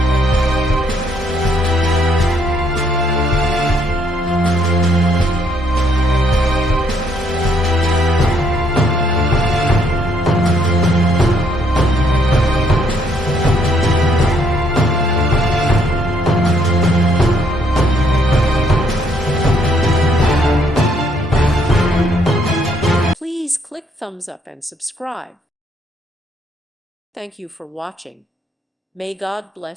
Please click thumbs up and subscribe. Thank you for watching. May God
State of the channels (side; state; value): both; normal; correlation 0.69